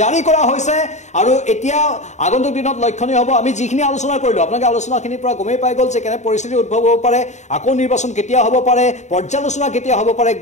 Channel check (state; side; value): late; right; 0.34 ms